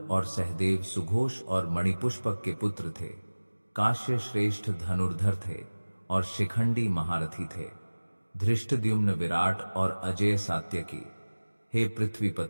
और सहदेव सुघोष और मणिपुष्पक के पुत्र थे। काश्य श्रेष्ठ धनुर्धर थे और शिखंडी महारथी थे। धृष्टद्युम्न विराट और अजय सात्यकी। हे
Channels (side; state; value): both; inverted; correlation -1.00